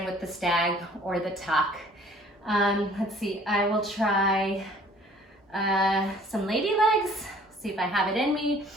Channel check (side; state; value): both; normal; correlation 0.54